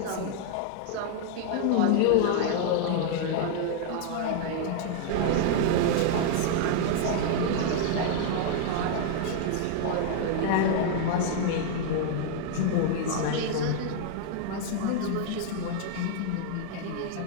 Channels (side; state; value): both; different; correlation 0.00